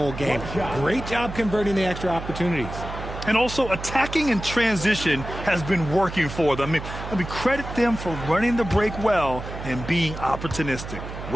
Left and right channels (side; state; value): right; noise; hum, 9 dB below the sound